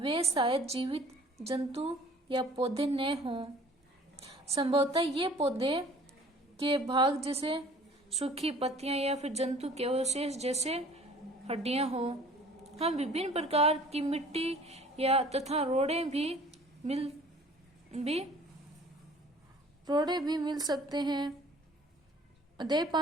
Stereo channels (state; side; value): normal; both; correlation 0.51